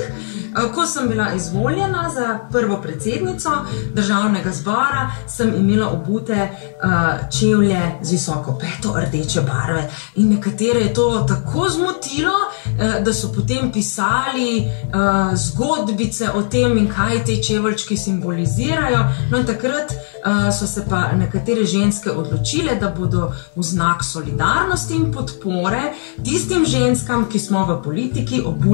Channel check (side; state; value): right; silent; 65 dB below the other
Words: Ko sem bila izvoljena za prvo predsednico Državnega zbora, sem imela obute čevlje z visoko peto rdeče barve. In nekatere je to tako zmotilo, da so potem pisali zgodbice o tem in kaj te čeveljčki simbolizirajo. No in takrat so se pa nekatere ženske odločile, da bodo v znak solidarnosti in podpore tistim ženskam, ki smo v politiki,